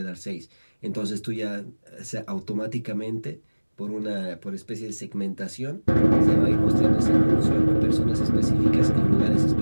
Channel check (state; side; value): inverted; both; correlation -1.00